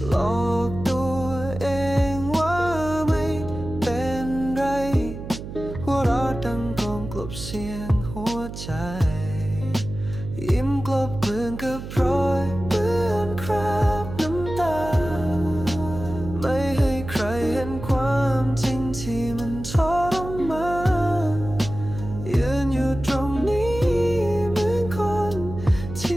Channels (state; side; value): noise; right; hum, 10 dB below the sound